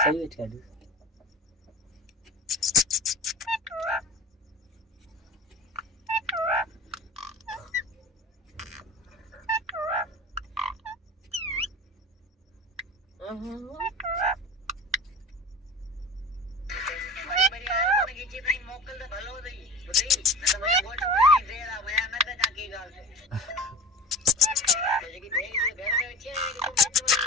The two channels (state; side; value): normal; both; correlation 0.35